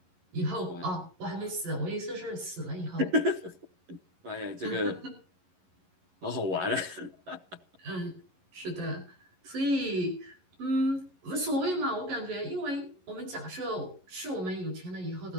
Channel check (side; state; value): left; late; 11 ms